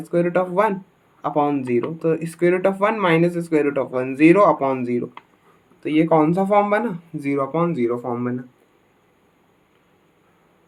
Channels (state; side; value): identical; both; correlation 1.00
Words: square root of 1 upon zero. तो square root of 1 minus square root of 1 zero upon zero, तो ये कौन सा फॉर्म बना, जीरो अपॉन जीरो फॉर्म बना।